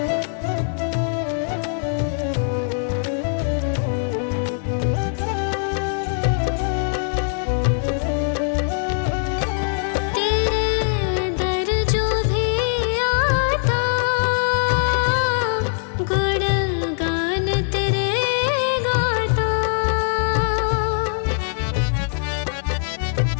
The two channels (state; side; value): silent; right; 59 dB below the other